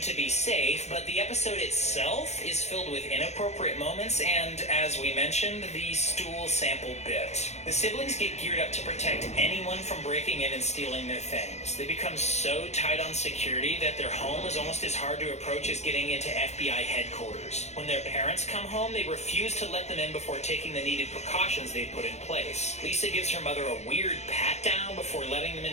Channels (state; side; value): late; right; 0.32 ms